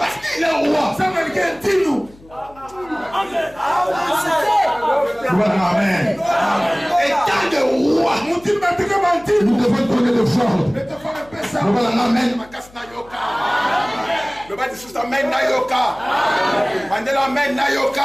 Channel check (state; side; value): noise; left; hum, 25 dB below the sound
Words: qu'il est roi. Amen. Et tant de rois, nous devons donner des ordres. Amen. Le bas de sous Amen Nayoka. Mandela Amen